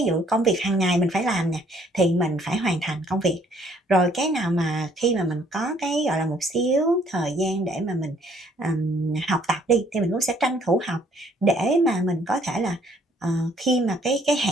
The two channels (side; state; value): both; normal; correlation 0.63